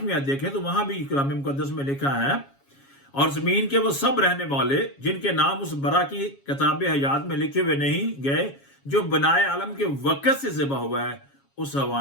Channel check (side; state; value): right; late; 7.3 ms